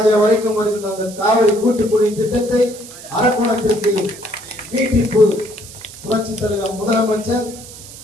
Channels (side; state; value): right; noise; hiss, 16 dB below the sound